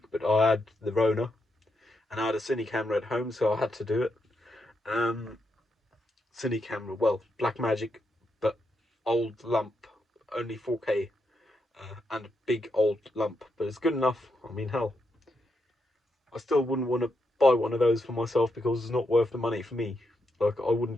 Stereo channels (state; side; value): normal; both; correlation 0.82